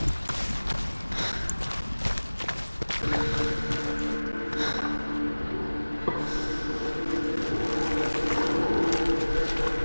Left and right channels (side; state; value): both; inverted; correlation -1.00